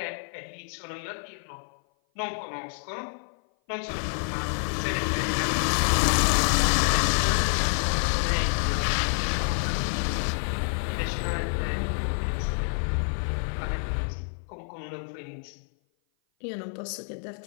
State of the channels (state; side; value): silent; right; 56 dB below the other